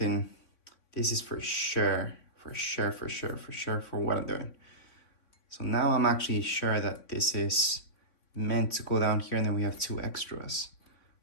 this is for sure for what I'm doing. So now I'm actually sure that this is meant to go down here, and then we have 2 extras,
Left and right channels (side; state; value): right; late; 3.5 ms